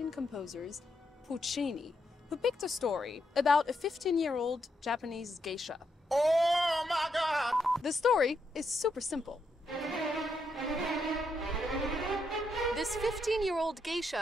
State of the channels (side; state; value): both; normal; correlation 0.80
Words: composers, Puccini, who picked a story about a 15-year-old Japanese geisha. Oh my God! The story is super simple. This 15-year-old